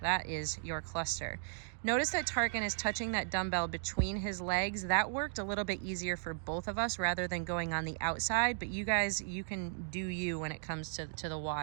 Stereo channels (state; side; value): silent; left; digital silence